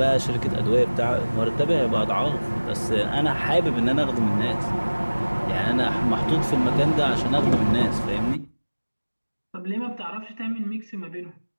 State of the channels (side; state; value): both; inverted; correlation -1.00